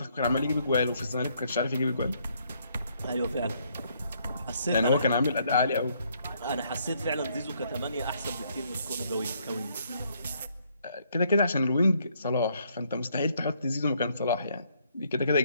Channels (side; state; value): both; inverted; correlation -0.69